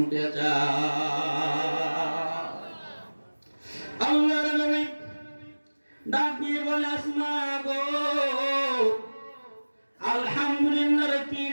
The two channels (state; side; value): inverted; both; correlation -1.00